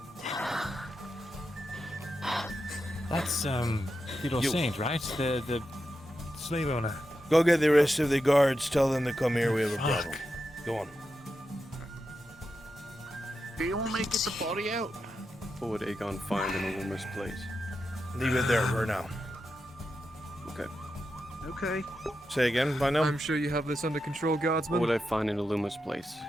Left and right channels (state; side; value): normal; both; correlation 0.88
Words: That's Theodore Saint, right? The slave owner. Go get the rest of the guards. Tell them to come here. We have a problem. Go on. Do you want me to get the body out? What would Aegon find in a rumor's place? Leave it there for now. Okay. Okay. Say again, by now? I'm sure you have this under control, guardsman. What would I find in Illuma's place?